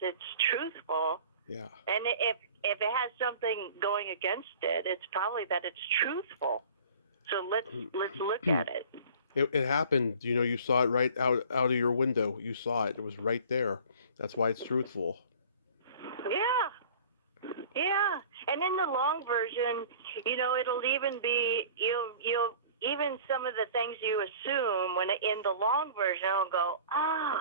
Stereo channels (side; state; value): both; inverted; correlation -0.45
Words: truthful. Yeah. And if it has something going against it, it's probably that it's truthful. So let's look at it. It happened, you saw it right out of your window. You saw it. It was right there. That's why it's truthful. Yeah. And in the long version, it'll even be, you'll even some of the things you assume when in the long version, it'll go,